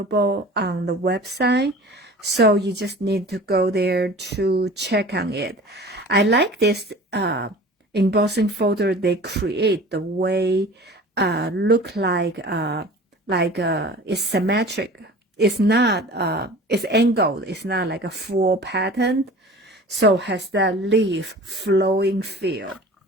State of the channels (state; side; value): normal; both; correlation 0.41